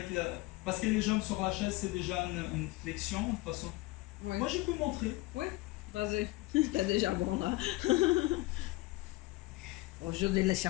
parce que les jambes sur la chaise c'est déjà une flexion de toute façon. Oui. Moi je peux montrer. Oui, vas-y. C'est déjà bon là. Aujourd'hui, le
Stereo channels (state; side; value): quieter; right; 21.0 dB